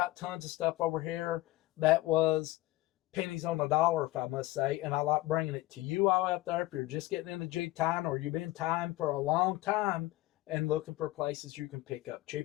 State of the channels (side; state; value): right; quieter; 18.1 dB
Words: tons of stuff over here that was pennies on the dollar, if I must say, and I like bringing it to you all out there if you're just getting into jig tying or you've been tying for a long time and looking for places you can pick up